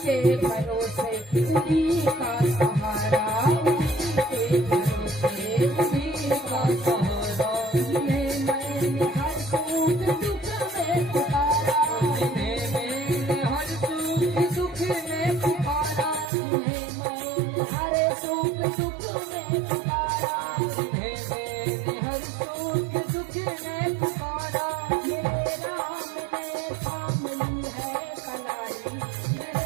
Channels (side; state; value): left; drops out; at 16.2 s